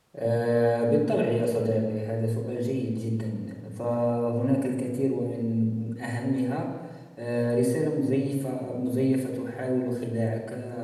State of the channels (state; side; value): identical; both; correlation 1.00